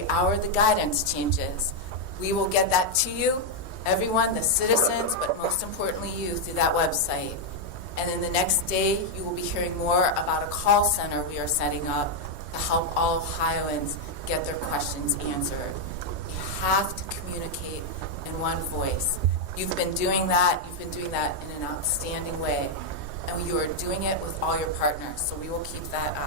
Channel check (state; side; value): late; left; 3.2 ms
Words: hour the guidance changes. We will get that to you, everyone, the citizens, but most importantly you, through that website. And then the next day, you will be hearing more about a call center we are setting up to help all Ohioans get their questions answered. You have to communicate in one voice. You've been doing that. You've been doing that in an outstanding way. And you are doing it with all your partners, so we will keep that